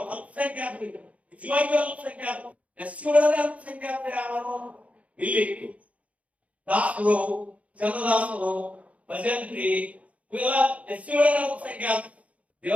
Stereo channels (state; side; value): late; left; 0.066 ms